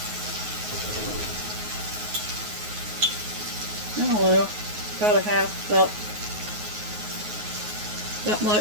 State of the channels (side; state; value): left; late; 9.5 ms